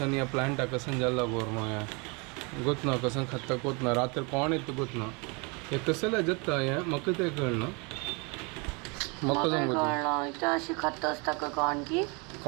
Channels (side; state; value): left; quieter; 30.9 dB